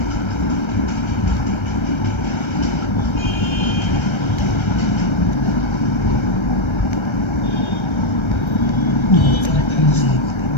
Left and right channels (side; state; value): right; late; 1.3 ms